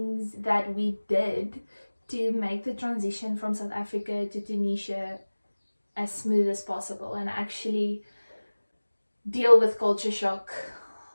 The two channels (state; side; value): inverted; both; correlation -1.00